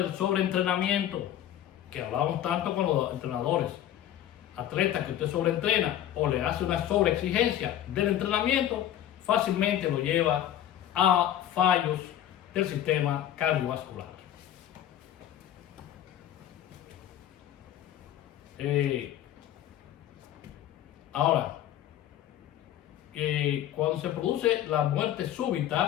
sobreentrenamiento, que hablábamos tanto con los entrenadores. Atletas que usted sobreentrena o le hace una sobreexigencia del entrenamiento, fácilmente lo lleva a fallos del sistema cardiovascular. Ahora, cuando se produce la muerte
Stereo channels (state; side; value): quieter; right; 11.6 dB